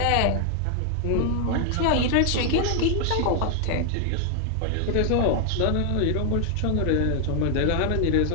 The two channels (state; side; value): different; both; correlation 0.00